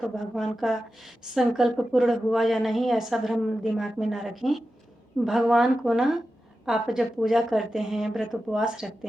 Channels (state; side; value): normal; both; correlation 0.92